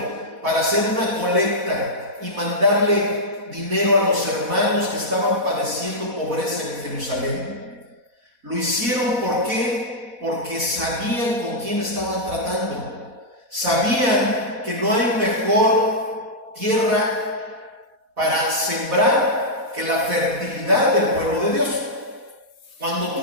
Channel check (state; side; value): late; left; 4.1 ms